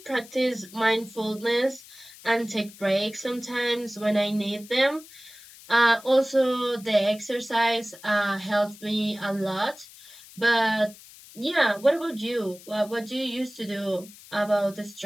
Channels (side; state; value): left; noise; hiss, 20 dB below the sound